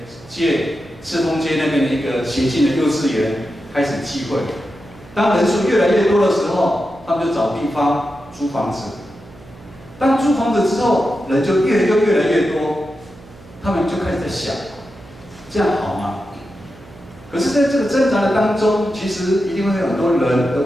借赤峰街那边的一个协进的幼稚园开始聚会。当人数越来越多的时候，他们就找地方租房子。当租房子之后，人就越来越多，他们就开始在想，这样好吗？可是，在这个挣扎的当中，其实一定会有很多人的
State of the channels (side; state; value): right; noise; hum, 22 dB below the sound